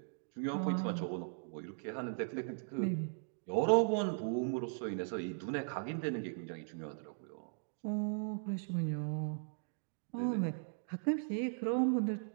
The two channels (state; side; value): silent; left; digital silence